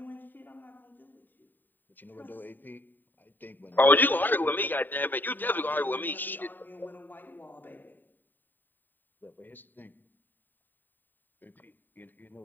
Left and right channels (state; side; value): late; right; 0.090 ms